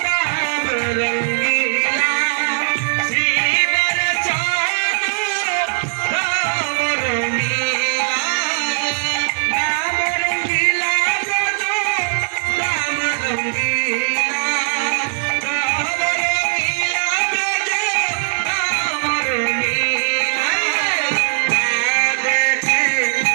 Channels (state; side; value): silent; left; digital silence